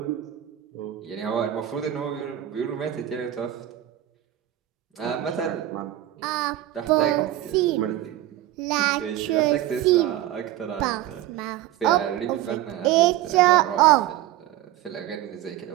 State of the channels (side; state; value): left; quieter; 13.7 dB